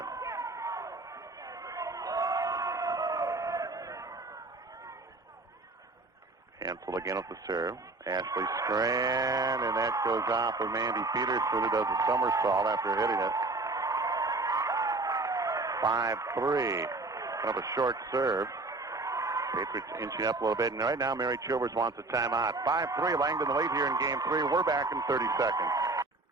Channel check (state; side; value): quieter; left; 3.2 dB